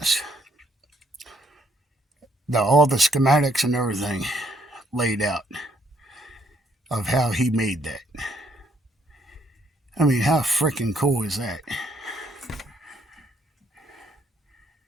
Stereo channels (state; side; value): normal; both; correlation 0.70